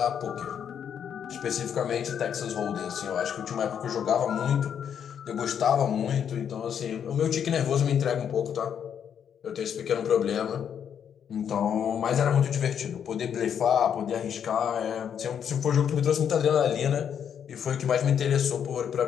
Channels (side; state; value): right; quieter; 8.3 dB